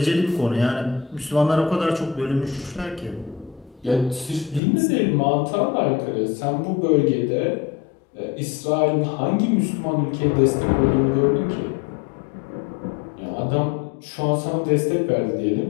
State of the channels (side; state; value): right; drops out; at 4.6 s